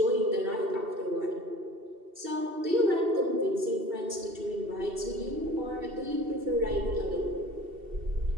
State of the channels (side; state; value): left; late; 2.7 ms